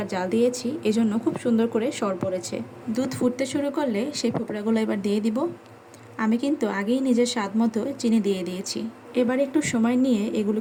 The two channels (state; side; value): identical; both; correlation 1.00